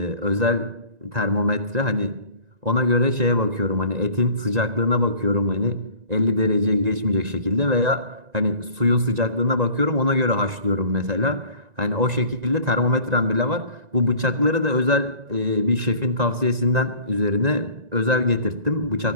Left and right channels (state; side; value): late; left; 1.9 ms